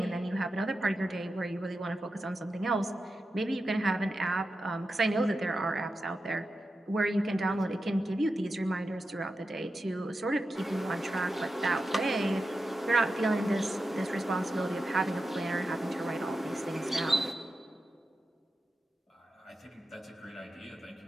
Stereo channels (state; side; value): normal; both; correlation 0.90